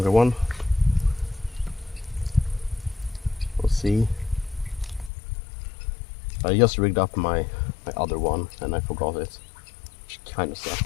one. We'll see. I just rigged up my other one and I forgot it, which kind of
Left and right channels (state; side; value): drops out; right; at 5.1 s